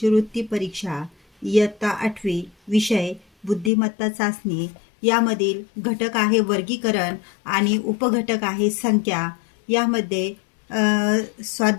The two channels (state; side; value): drops out; right; at 3.7 s